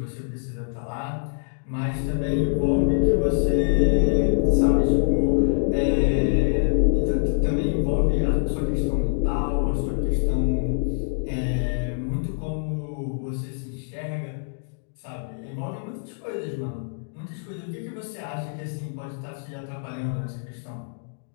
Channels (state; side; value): silent; right; digital silence